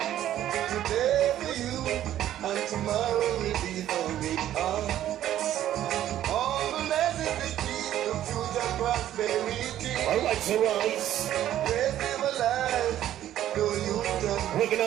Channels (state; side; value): quieter; left; 12.2 dB